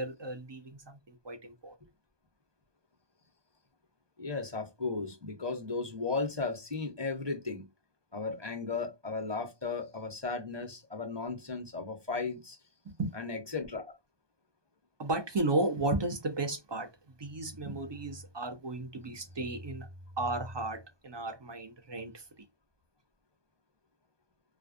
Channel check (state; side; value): late; left; 1.2 ms